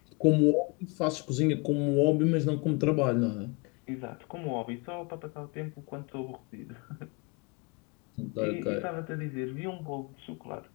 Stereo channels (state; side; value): quieter; right; 29.4 dB